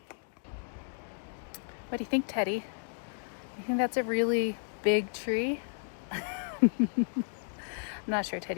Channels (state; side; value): silent; right; digital silence